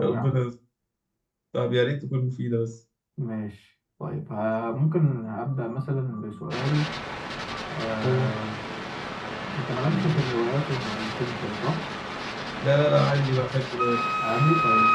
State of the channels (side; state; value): both; identical; correlation 1.00